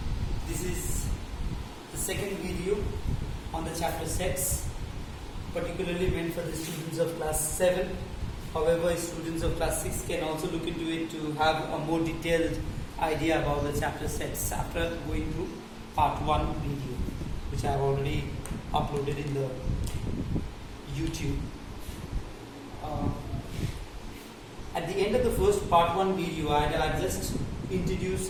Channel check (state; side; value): identical; both; correlation 1.00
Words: this is the second video on the chapter sets, particularly meant for the students of class 7. However, students of class 6 can also look into it to have a more detailed idea about the chapter sets after going through part 1 video, which I have already uploaded in the YouTube. At the end of the first part 1 video, I had just introduced